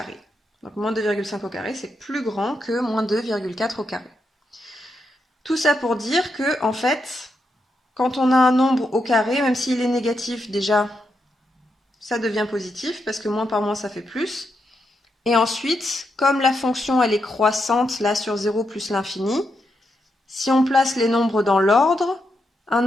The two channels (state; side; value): normal; both; correlation 0.83